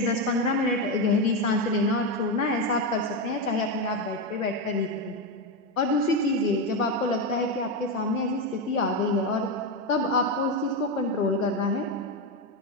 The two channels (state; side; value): normal; both; correlation 0.10